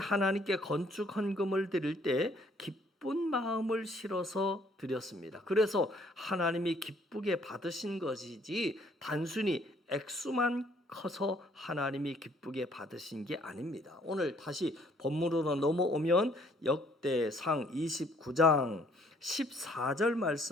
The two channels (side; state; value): both; normal; correlation 0.63